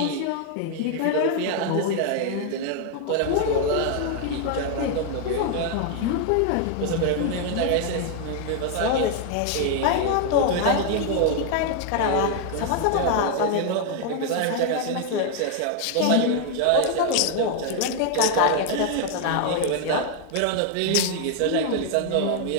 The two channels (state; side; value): different; both; correlation 0.00